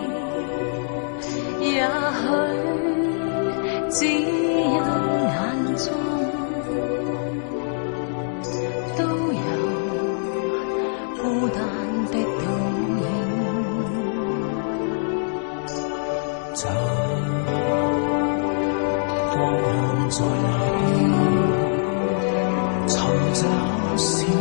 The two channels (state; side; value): silent; right; digital silence